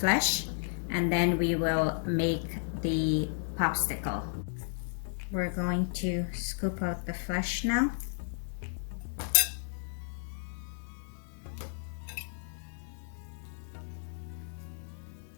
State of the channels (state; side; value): silent; right; digital silence